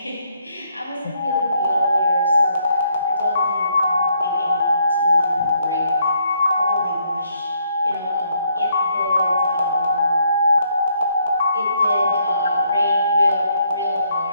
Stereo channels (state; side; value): inverted; both; correlation -0.72